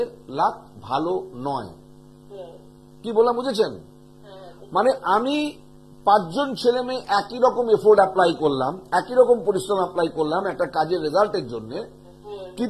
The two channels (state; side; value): identical; both; correlation 1.00